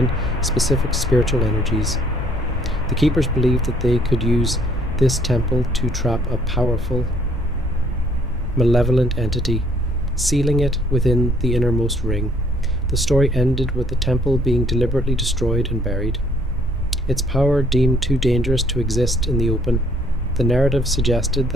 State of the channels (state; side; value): normal; both; correlation 0.63